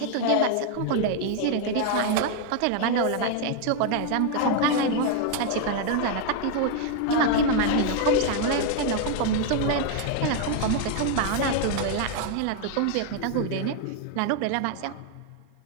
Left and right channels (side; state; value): both; different; correlation 0.00